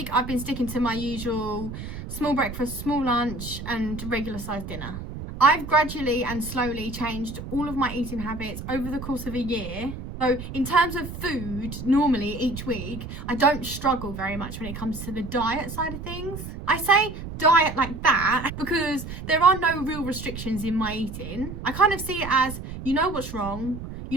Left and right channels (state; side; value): noise; right; rumble, 9 dB below the sound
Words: I've been sticking to my usual small breakfast, small lunch and regular sized dinner. I've gradually and slowly changed all of my eating habits over the course of a year. So in terms of food, normally each week, I don't struggle very much when it comes to the diet side of things. I say diet like that because there are no real restrictions in my eating. I kind of see it as, you know what's wrong, you